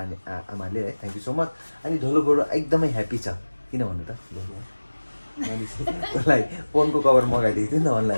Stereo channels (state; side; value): inverted; both; correlation -1.00